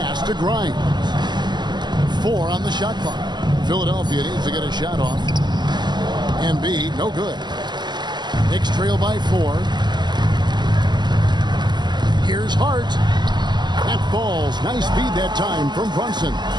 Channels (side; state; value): left; late; 0.21 ms